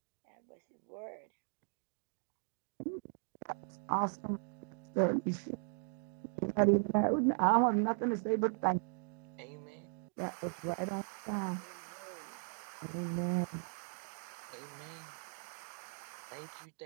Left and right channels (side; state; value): left; silent; 52 dB below the other